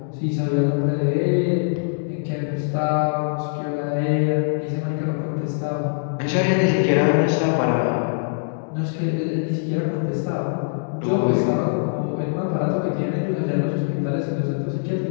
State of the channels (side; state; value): right; silent; digital silence